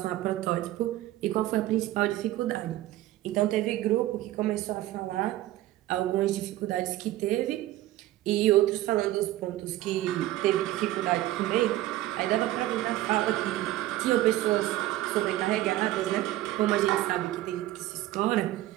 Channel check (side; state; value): left; quieter; 15.4 dB